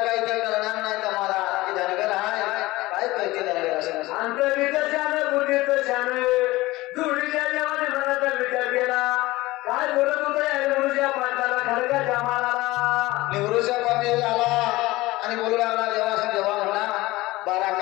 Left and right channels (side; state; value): right; quieter; 19.4 dB